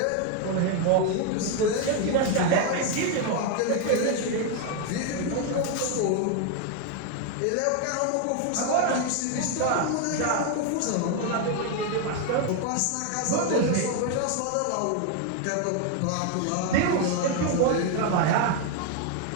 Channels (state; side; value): different; both; correlation 0.01